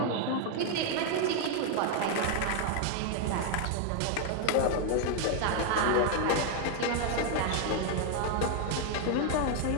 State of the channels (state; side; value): different; both; correlation 0.01